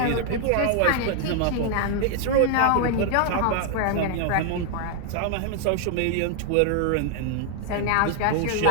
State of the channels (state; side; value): different; both; correlation 0.00